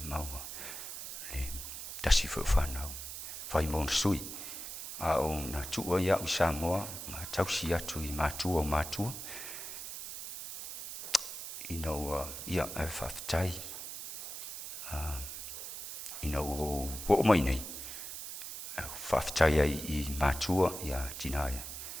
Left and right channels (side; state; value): right; noise; hiss, 8 dB below the sound